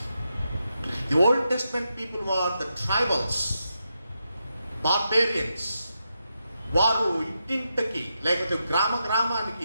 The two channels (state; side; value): inverted; both; correlation -0.86